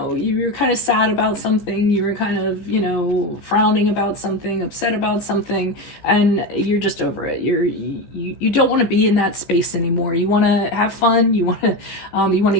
you're kind of sad about something, you were kind of, you know, frowning about something, upset about something, and you're just over it. You don't want to be in that space anymore. You want to have fun. You want to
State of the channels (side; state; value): right; late; 14 ms